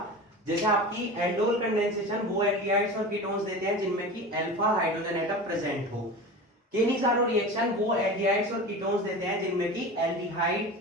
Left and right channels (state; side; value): normal; both; correlation 0.31